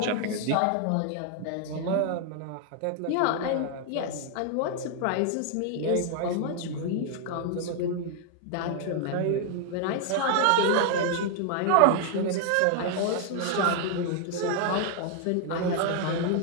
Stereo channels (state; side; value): different; both; correlation 0.00